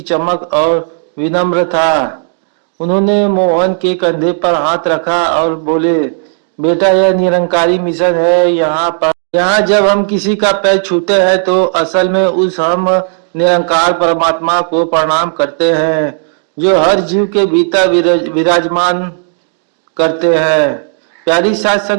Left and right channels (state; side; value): silent; left; digital silence